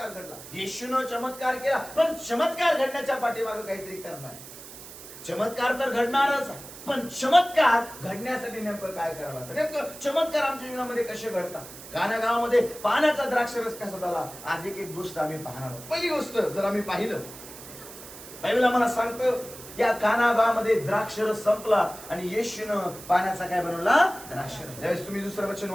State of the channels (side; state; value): right; noise; hiss, 15 dB below the sound